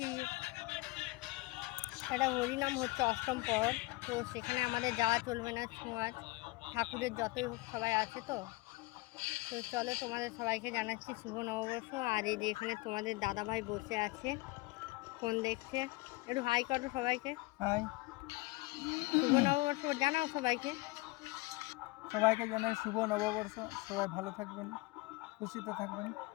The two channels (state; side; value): quieter; right; 23.0 dB